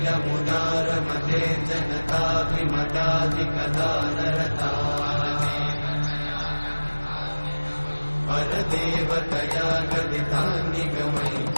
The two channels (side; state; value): both; inverted; correlation -1.00